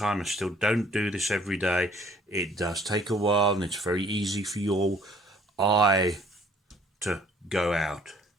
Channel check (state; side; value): normal; both; correlation 0.58